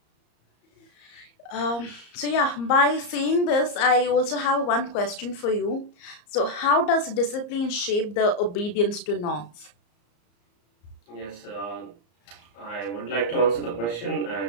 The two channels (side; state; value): right; late; 34 ms